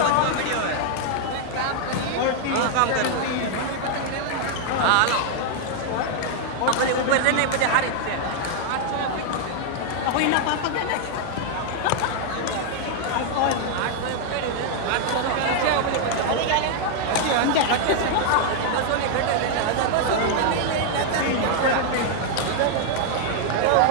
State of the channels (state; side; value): different; both; correlation 0.00